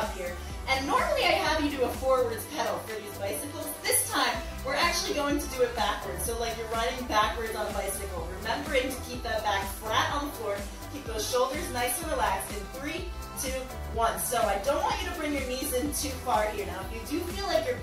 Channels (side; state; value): both; identical; correlation 1.00